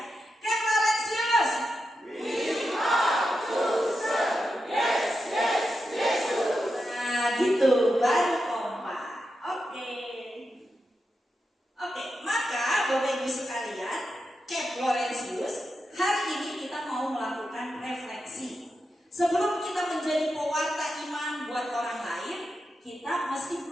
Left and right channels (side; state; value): both; normal; correlation 0.88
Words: Camp Laurentius. We are chosen. Yes, Yesus. Nah, gitu baru kompak. Oke, maka Bapak Ibu sekalian, Camp Laurentius, hari ini kita mau melakukan refleksi. Sebelum kita menjadi pewarta iman buat orang lain, kita mesti